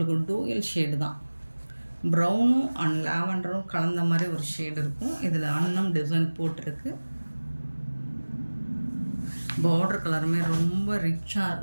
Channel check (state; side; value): inverted; both; correlation -1.00